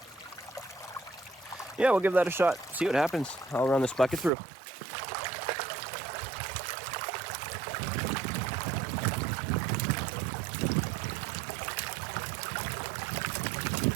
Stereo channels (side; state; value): left; drops out; at 4.3 s